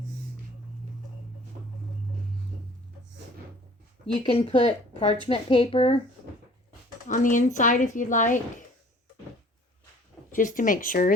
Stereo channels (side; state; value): both; normal; correlation 0.51